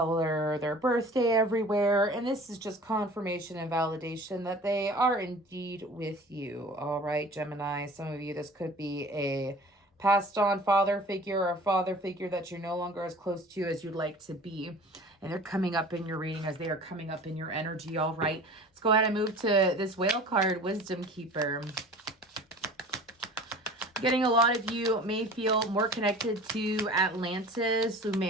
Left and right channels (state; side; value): normal; both; correlation 0.43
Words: their birthday everywhere. And this is just confirmation and validation that they are indeed with you. All right, Gemini, some of you, this could be a passed on father figure or a father figure that you're no longer as close to as you'd like to be. And they're coming up in your reading as they are coming up in your energy. All right, let's go ahead and move to this whale card, Wisdom Keeper. Getting a lot of you may feel more connected to Atlantis.